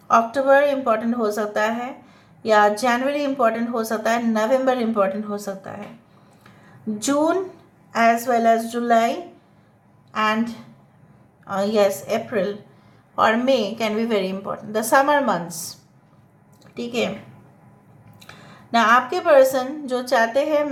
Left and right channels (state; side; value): identical; both; correlation 1.00